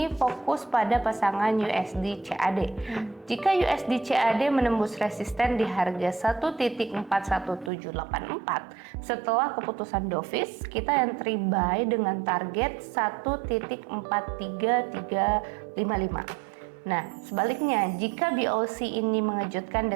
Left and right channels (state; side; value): drops out; left; at 7.7 s